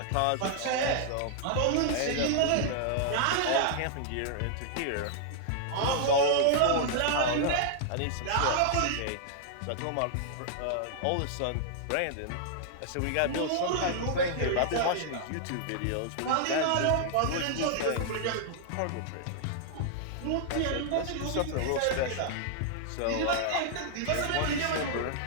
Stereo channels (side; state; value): both; different; correlation -0.01